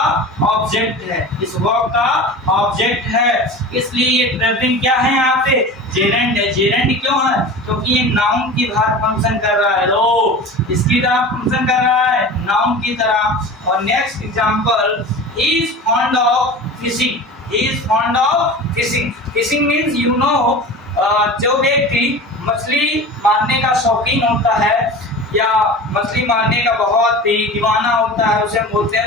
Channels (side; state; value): both; normal; correlation 0.34